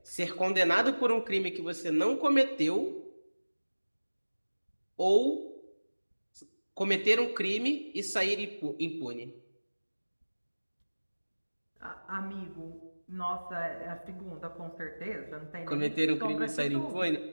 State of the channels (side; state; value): both; inverted; correlation -1.00